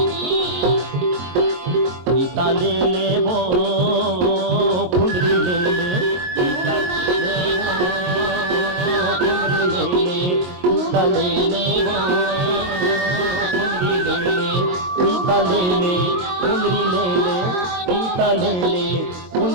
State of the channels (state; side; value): late; left; 22 ms